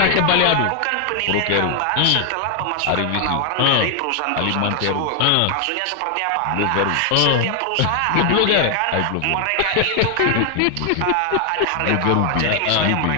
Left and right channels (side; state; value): both; different; correlation 0.00